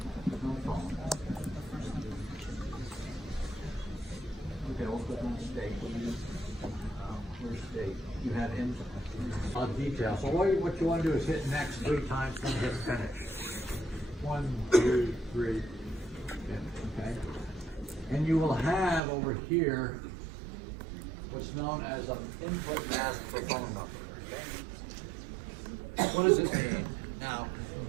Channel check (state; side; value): drops out; left; at 19.0 s